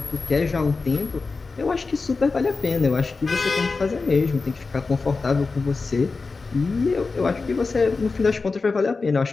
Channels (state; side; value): quieter; right; 4.1 dB